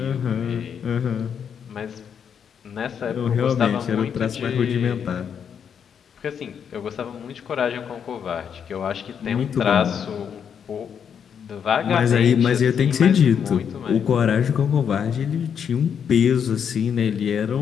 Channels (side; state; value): right; quieter; 7.7 dB